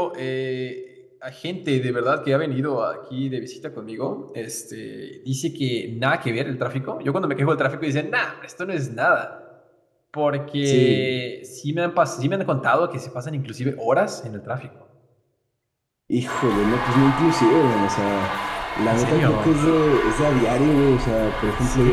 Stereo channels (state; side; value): identical; both; correlation 1.00